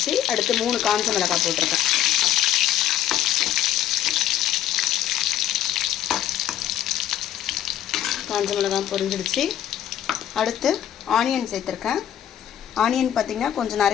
அடுத்து 3 காஞ்ச மிளகாய் போட்டிருக்கேன். காஞ்ச மிளகாய் பொரிஞ்சிடுச்சு. அடுத்து ஆனியன் சேர்த்துருக்கேன். ஆனியன் பார்த்திங்கன்னா கொஞ்சம்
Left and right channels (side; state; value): right; quieter; 11.3 dB